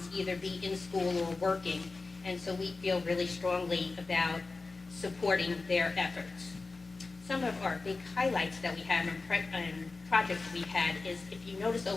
either be in school or working. And so we feel really strongly about supporting their efforts. Some of our big highlights that we have and projects we've had is, if you notice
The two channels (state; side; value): quieter; right; 3.7 dB